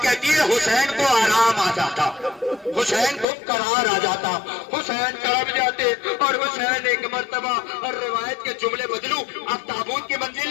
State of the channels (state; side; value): drops out; right; at 3.2 s